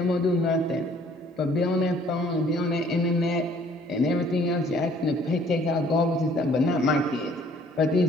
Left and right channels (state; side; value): normal; both; correlation 0.58